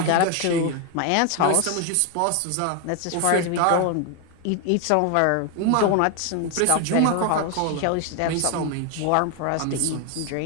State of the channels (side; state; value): both; different; correlation 0.01